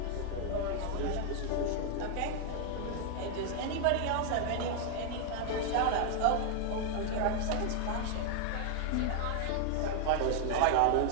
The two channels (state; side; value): different; both; correlation 0.00